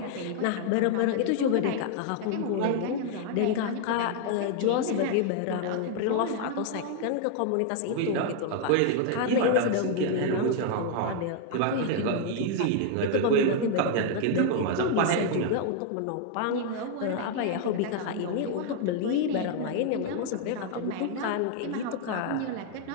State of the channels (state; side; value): different; both; correlation 0.00